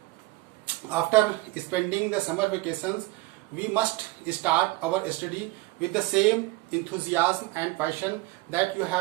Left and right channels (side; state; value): left; quieter; 20.3 dB